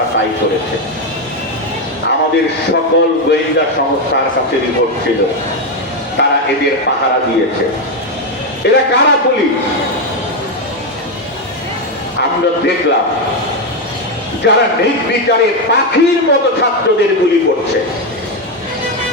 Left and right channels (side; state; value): both; normal; correlation 0.07